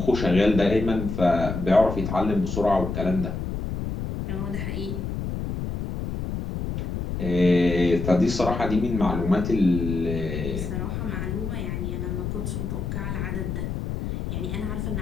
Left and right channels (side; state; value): left; noise; rumble, 4 dB below the sound